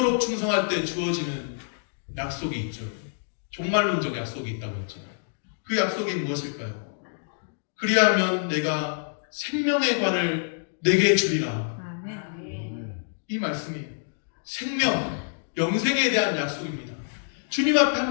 충성할 때 주어지는 약속이 있죠. 종말론적 약속이 있다고 했죠. 그 약속이 무엇일까요? 그리하면 내가 생명의 관을 내게 주리라. 이 말씀이에요. 생명, 영생에 대한 약속입니다. 주님 앞에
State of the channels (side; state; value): right; silent; digital silence